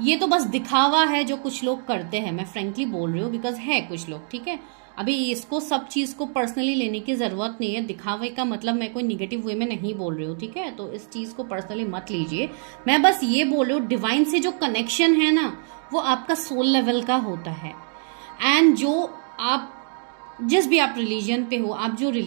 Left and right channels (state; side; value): silent; left; 56 dB below the other